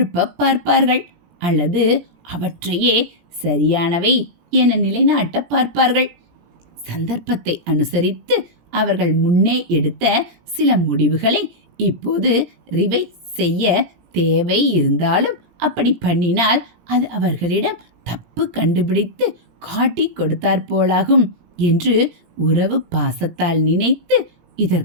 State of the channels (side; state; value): left; late; 17 ms